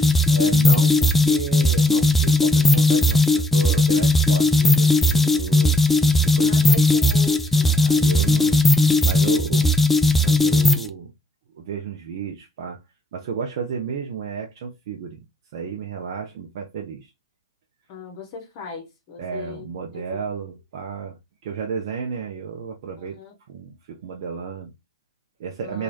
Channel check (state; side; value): normal; both; correlation 0.71